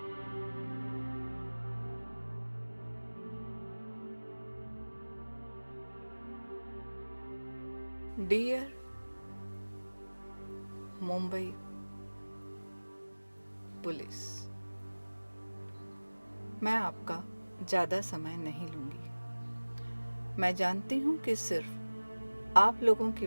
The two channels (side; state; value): both; inverted; correlation -1.00